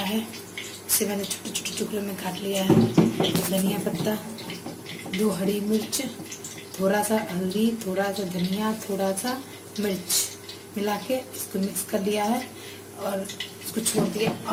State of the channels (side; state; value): both; identical; correlation 1.00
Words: है, इसे मैंने छोटे छोटे टुकड़े में काट लिया है। धनिया पत्ता, 2 हरी मिर्च, थोड़ा सा हल्दी, थोड़ा सा धनिया, थोड़ा सा मिर्च मिला के इसको मिक्स कर लिया है और इसको छोड़ दिया।